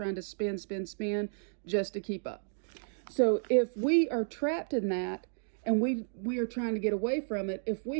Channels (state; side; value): silent; left; digital silence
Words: to spend just to keep up. So if we are trapped in that and we are trying to get away from it, if